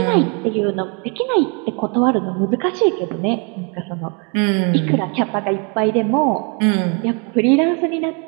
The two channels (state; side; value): quieter; left; 35.7 dB